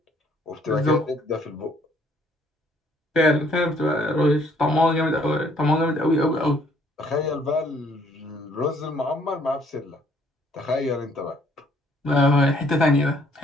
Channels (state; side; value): normal; both; correlation 0.63